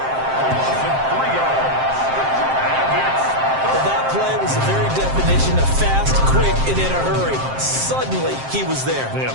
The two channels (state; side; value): late; left; 7.6 ms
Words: Well, that play was the very definition of fast, quick, and in a hurry. Suddenly, he was there. Yeah,